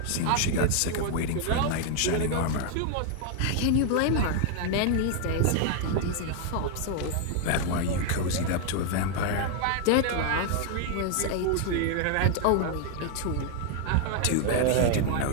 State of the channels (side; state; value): both; different; correlation 0.00